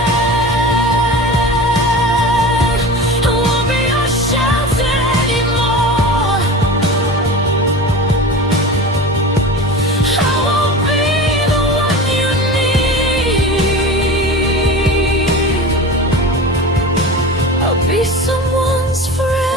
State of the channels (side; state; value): both; normal; correlation 0.32